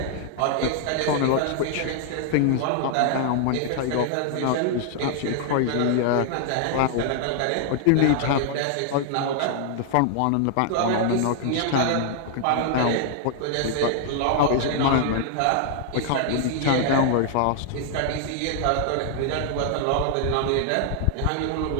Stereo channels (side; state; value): both; different; correlation -0.01